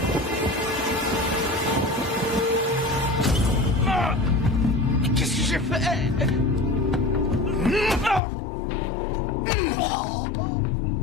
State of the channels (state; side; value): drops out; right; at 8.2 s